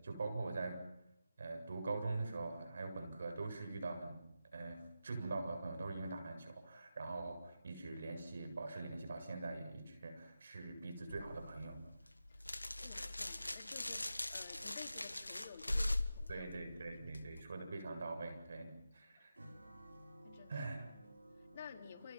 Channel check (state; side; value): inverted; both; correlation -0.90